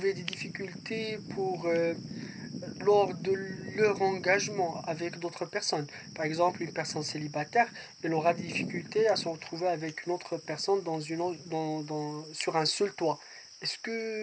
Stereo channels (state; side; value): identical; both; correlation 1.00